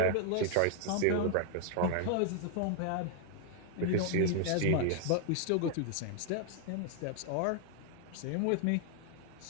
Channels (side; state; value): both; different; correlation 0.00